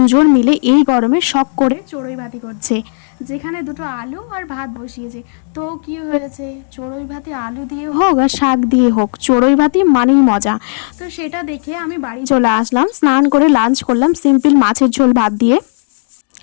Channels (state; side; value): silent; right; digital silence